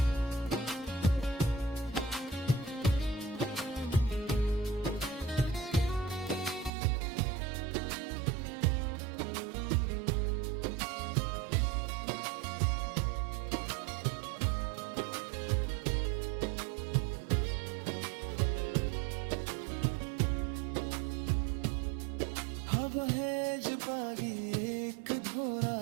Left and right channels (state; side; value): drops out; left; at 6.7 s